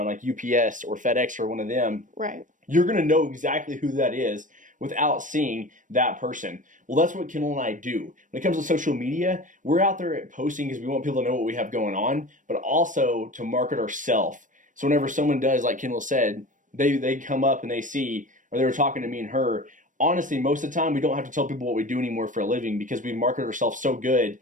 like UPS or FedEx or one of them. Right. You're going to know exactly who that is without seeing that person. Well, that's what Kendall and I do. When it comes to social media, we're out there posting because we want people to know what we have going on, but also to market ourselves. So whenever someone does, like Kendall said, they come up and they see, or they were talking to me and her, honestly, most of the time we don't have to tell people what we do anymore for a living because we market ourselves so good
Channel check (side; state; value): left; late; 0.37 ms